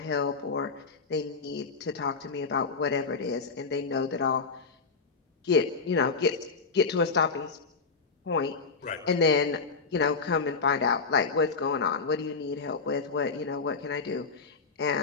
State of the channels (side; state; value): right; quieter; 4.7 dB